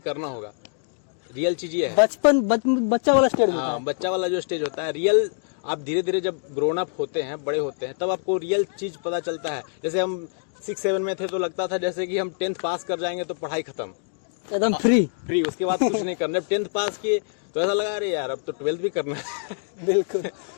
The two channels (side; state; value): right; silent; digital silence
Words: होगा। रियल चीज ये है, बच्चा वाला स्टेज होता है। बच्चा वाला जो स्टेज होता है, रियल आप धीरे धीरे जब ग्रोन अप होते हैं, बड़े होते हैं, तब आपको रियल चीज पता चलता है। जैसे हम 6-7 में थे तो लगता था जैसे कि हम 10th पास कर जाएंगे तो पढ़ाई खत्म, एकदम फ्री। उसके बाद कुछ नहीं करना। 10th पास किए तो ऐसा लगा अरे यार अब तो 12th भी करना है। बिल्कुल।